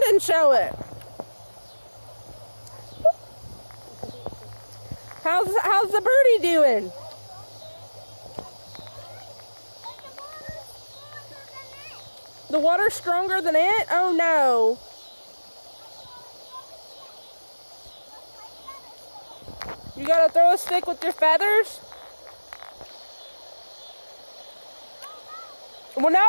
and show it. How's the birdie doing? The water's stronger than it? Oh no. You gotta throw a stick with your feathers? Well,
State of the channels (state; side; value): inverted; both; correlation -1.00